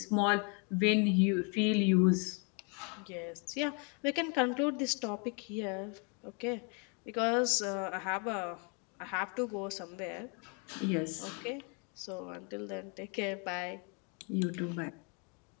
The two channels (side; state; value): right; quieter; 35.7 dB